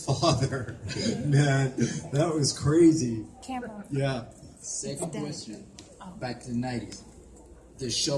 Man, that was crazy. Camera. Yeah. Second question, back in the 90s. The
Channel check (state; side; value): identical; both; correlation 1.00